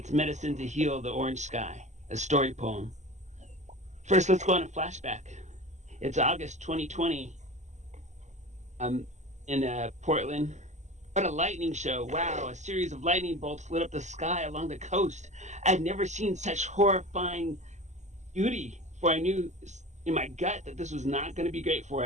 Medicine to Heal the Orange Sky, a story poem. First, let's go on a flashback. It's August 2020. in Portland. What a lightning show. Wow, a series of lightning bolts lit up the sky along the coast. I'd never seen such horrifying beauty, for I knew in my gut that this was not going to be great for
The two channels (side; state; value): left; late; 0.34 ms